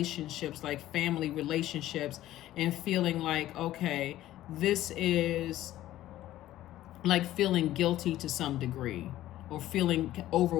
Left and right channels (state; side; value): quieter; right; 14.3 dB